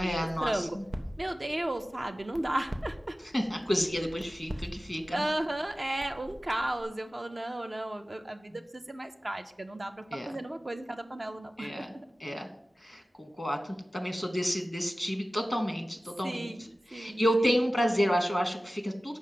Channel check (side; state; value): both; normal; correlation 0.96